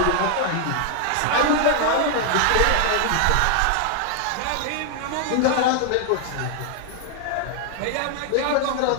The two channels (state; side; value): different; both; correlation 0.00